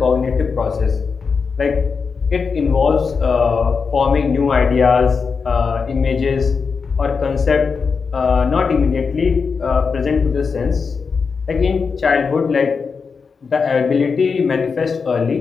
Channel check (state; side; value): quieter; right; 5.3 dB